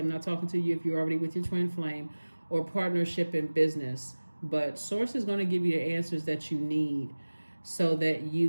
not talking to you if you're already with your twin flame, or partnership in business. But Source is going to give you the answers that you need so that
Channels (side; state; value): both; inverted; correlation -1.00